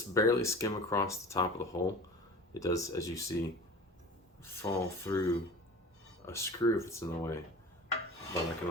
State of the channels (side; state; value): both; normal; correlation 0.38